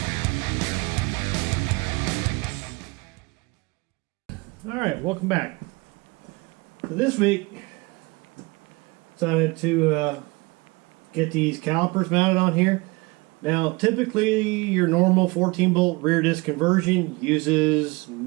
Alright, welcome back. So this week, decided to get these calipers mounted on here. Now, typically your normal 14-bolt rear disc conversion uses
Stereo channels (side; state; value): left; quieter; 25.1 dB